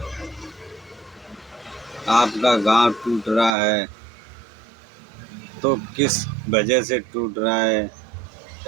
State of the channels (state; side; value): drops out; left; at 3.5 s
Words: आपका गांव टूट रहा है तो किस वजह से टूट रहा है